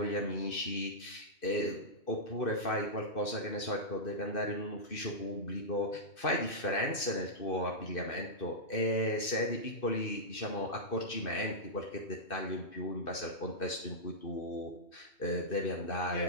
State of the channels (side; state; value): right; late; 2.6 ms